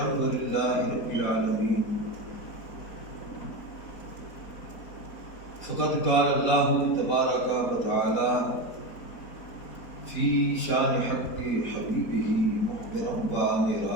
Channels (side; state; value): right; late; 4.5 ms